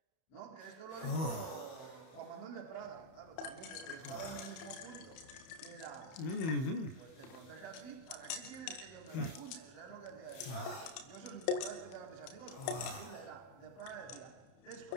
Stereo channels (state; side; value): late; right; 31 ms